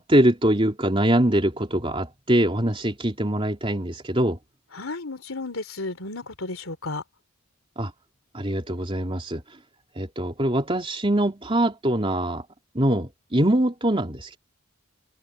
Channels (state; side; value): normal; both; correlation 0.71